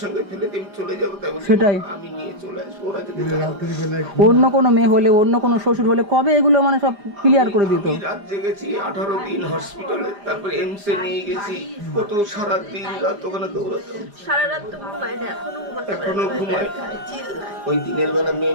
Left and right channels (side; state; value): left; late; 4.9 ms